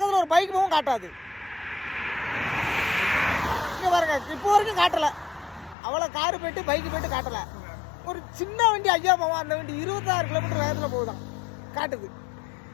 ஒரு பைக்கு போகும் காட்டாது. இங்கே பாருங்க, இப்போ வரைக்கும் காட்டலை. அவ்வளோ காரு போயிட்டு பைக்கு போயிட்டு காட்டலை. ஒரு சின்ன வண்டி ஐயா போவோம், அந்த வண்டி 26 கிலோமீட்டர் வேகத்தில் போகுதான், காட்டுது.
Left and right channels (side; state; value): right; drops out; at 5.8 s